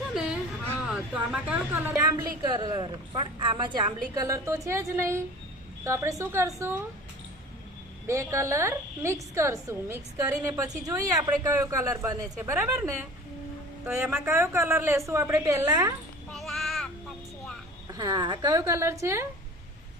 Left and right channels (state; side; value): normal; both; correlation 0.41